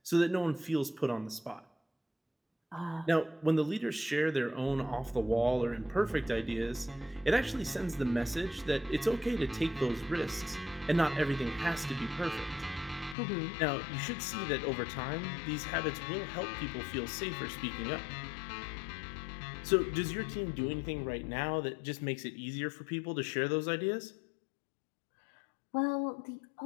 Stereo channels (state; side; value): drops out; right; at 13.2 s